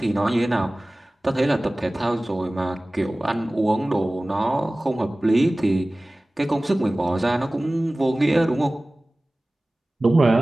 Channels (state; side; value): normal; both; correlation 0.98